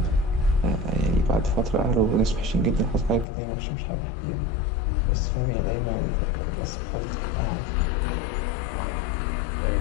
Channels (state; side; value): drops out; right; at 3.2 s